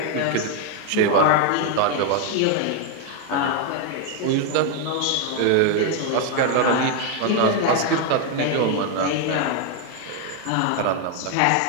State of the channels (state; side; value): different; both; correlation 0.01